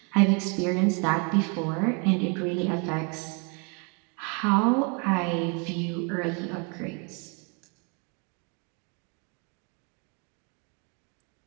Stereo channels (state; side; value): quieter; left; 35.0 dB